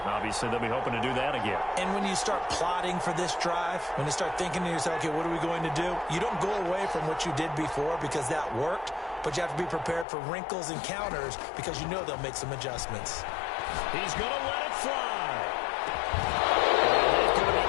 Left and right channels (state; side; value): drops out; right; at 10.1 s